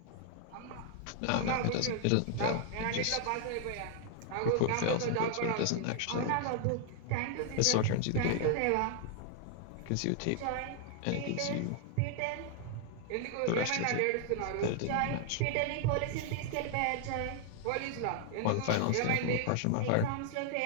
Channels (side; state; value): both; different; correlation 0.00